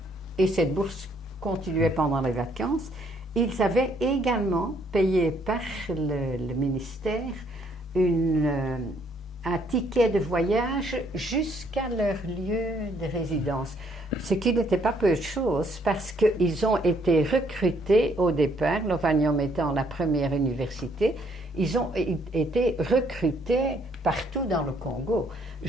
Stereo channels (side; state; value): both; normal; correlation 0.67